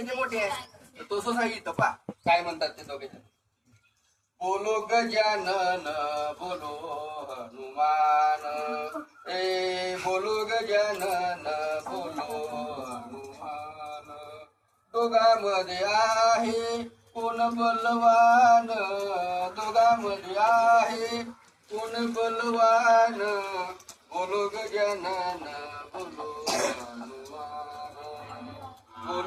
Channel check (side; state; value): both; identical; correlation 1.00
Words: मोठे आहे. तर तसंच आहे इथं पा काय म्हणतात ते दोघे. बोलो गजानन बोलो हनुमान, बोलो गजानन बोलो हनुमान. दोघांमध्ये आहे कोण बलवान, दोघांमध्ये आहे कोण बलवान. बोलो गजानन बोलो हनुमान,